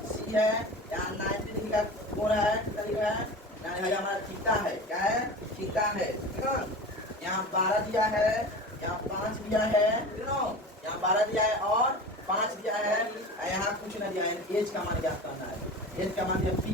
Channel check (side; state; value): both; normal; correlation 0.33